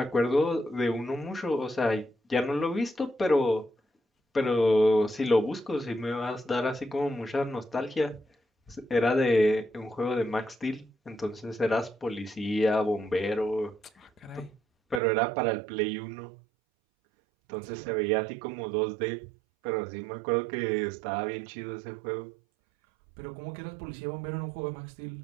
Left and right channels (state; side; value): drops out; left; at 15.0 s